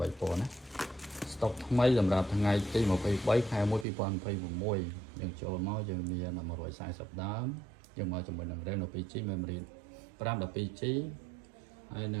ពណ៌ណាស្តុកថ្មីសម្រាប់ថ្ងៃទី23ខែ1 2026យើងចូលមកយើងមាន140ដើមយើងមកជាមួយនឹង RAM 12GB memory 512GB ហើយន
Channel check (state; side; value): drops out; left; at 3.9 s